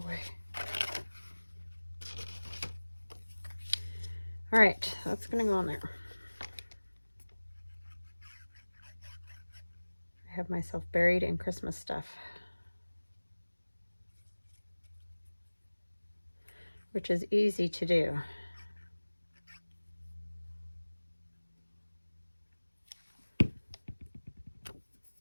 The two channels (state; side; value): inverted; both; correlation -1.00